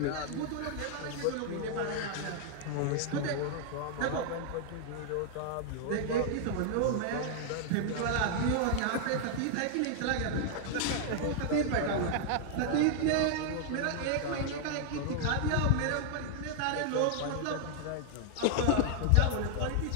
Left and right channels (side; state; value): both; different; correlation 0.00